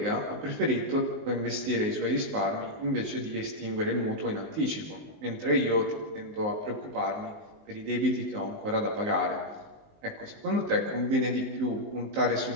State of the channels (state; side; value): late; left; 19 ms